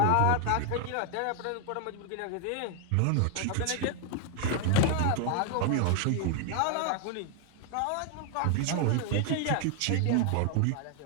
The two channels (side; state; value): both; different; correlation 0.01